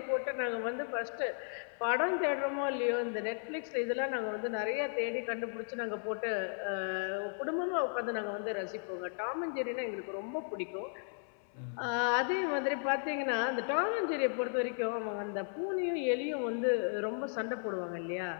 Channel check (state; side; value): silent; right; 54 dB below the other